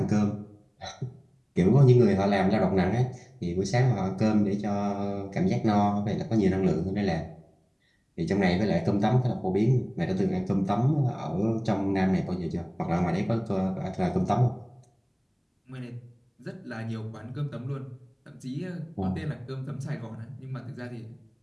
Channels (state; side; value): identical; both; correlation 1.00